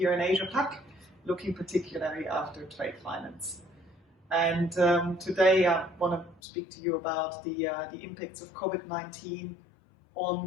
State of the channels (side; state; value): right; drops out; at 6.4 s